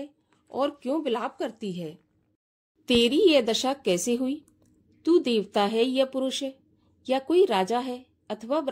और क्यों विलाप करती है? तेरी यह दशा कैसे हुई? तू देवता है या पुरुष है या कोई राजा है अथवा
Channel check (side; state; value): both; identical; correlation 1.00